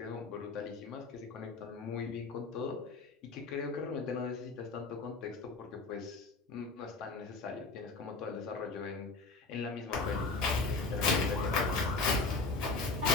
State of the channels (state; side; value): quieter; right; 3.7 dB